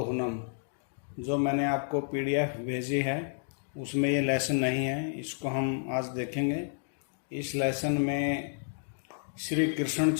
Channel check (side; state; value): right; silent; digital silence